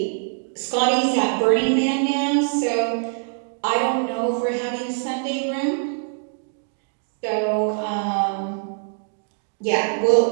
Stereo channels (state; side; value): silent; left; 63 dB below the other